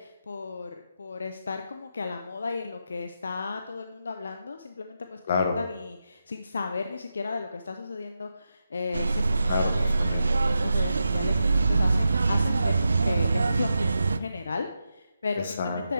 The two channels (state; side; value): inverted; both; correlation -0.88